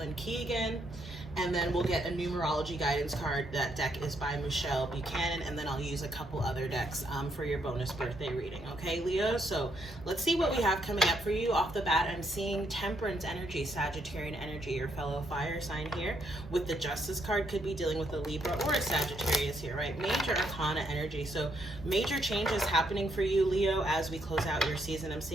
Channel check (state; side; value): normal; both; correlation 0.75